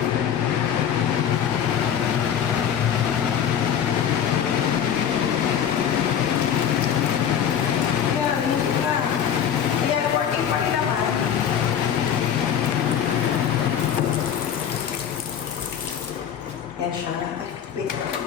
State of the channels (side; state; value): right; quieter; 8.7 dB